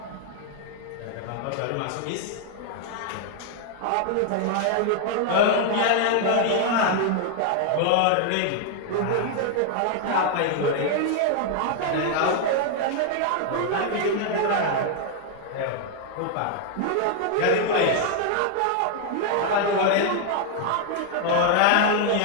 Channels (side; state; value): both; different; correlation 0.00